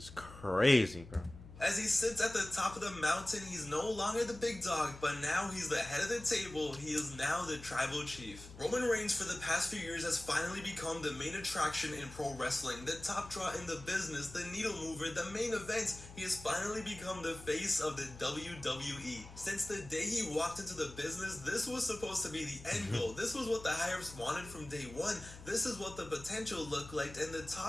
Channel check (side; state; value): left; noise; hum, 16 dB below the sound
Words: crazy, bro. As he sits at the top of the mountain, he's no longer the big dog, but now he's the head of the table. He is now the tribal chief. Roman Reigns for the past few years has finally become the main attraction in pro wrestling, the top draw in the business, the needle mover, the main event. He has finally become the face of the WWE. Since the day he walked into the business, this was supposed to be the end goal. This was what the higher-ups wanted from day one. This is what the potential looked like, and the